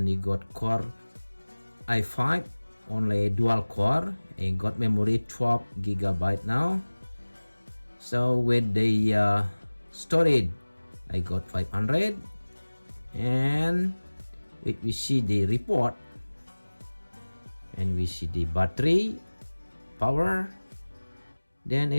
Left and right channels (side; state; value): both; inverted; correlation -1.00